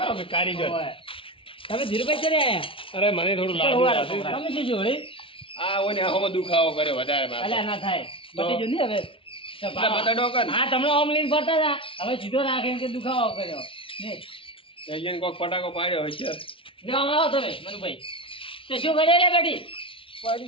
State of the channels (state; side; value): late; right; 0.26 ms